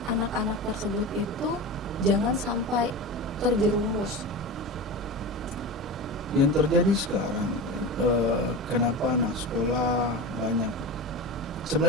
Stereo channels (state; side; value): normal; both; correlation 0.26